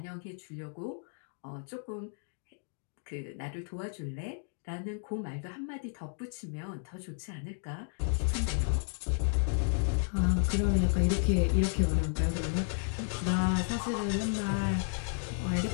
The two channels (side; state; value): right; silent; 56 dB below the other